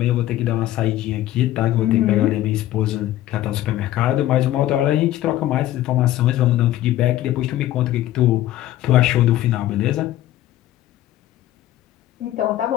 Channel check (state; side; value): quieter; right; 14.0 dB